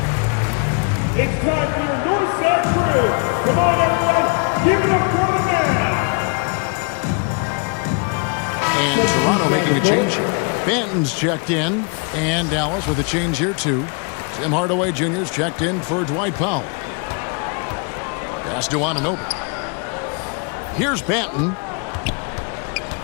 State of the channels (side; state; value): right; quieter; 35.2 dB